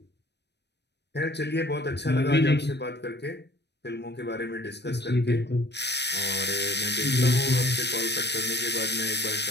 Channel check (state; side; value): late; right; 0.50 ms